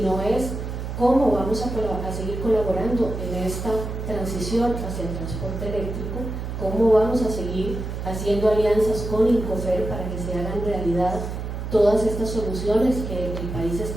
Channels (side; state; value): right; noise; hum, 5 dB below the sound